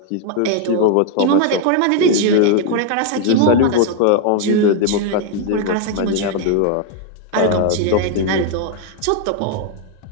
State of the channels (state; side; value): different; both; correlation 0.01